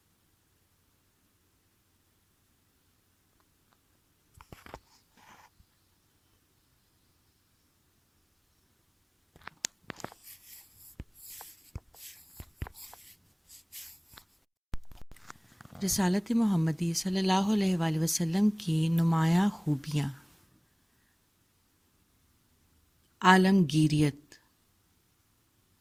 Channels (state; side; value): identical; both; correlation 1.00